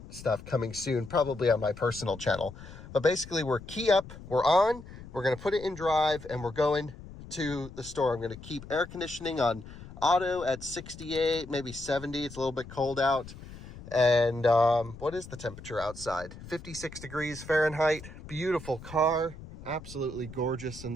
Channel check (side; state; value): left; noise; rumble, 15 dB below the sound